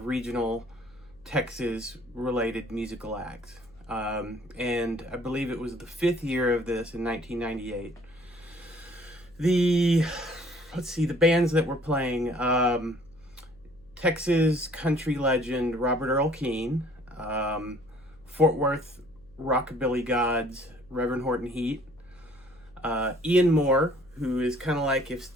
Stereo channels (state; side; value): noise; left; hum, 27 dB below the sound